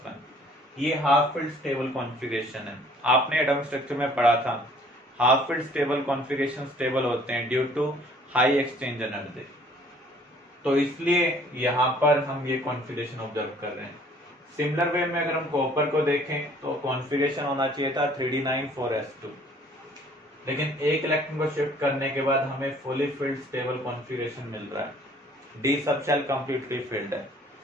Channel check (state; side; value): normal; both; correlation 0.56